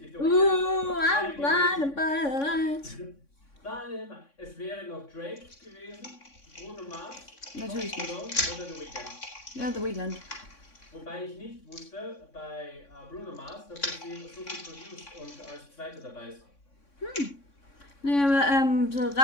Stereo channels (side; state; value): right; late; 3.6 ms